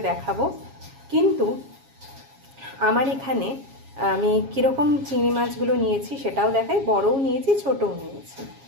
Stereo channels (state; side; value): late; left; 7.3 ms